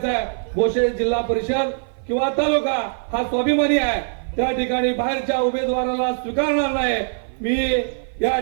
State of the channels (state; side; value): silent; left; 55 dB below the other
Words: आहे, भोसे जिल्हा परिषद किंवा तालुका हा स्वाभिमानी आहे, त्या ठिकाणी बाहेरच्या उमेदवाराला स्वीकारणार नाही। मी या